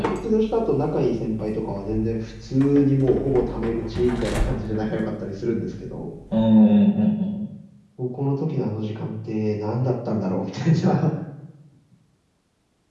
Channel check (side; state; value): both; identical; correlation 1.00